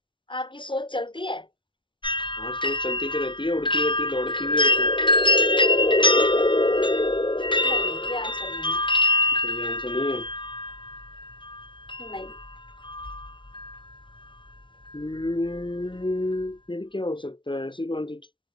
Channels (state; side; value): late; right; 0.24 ms